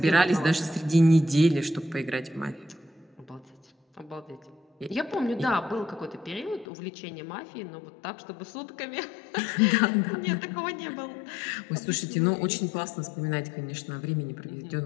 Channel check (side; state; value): right; drops out; at 6.7 s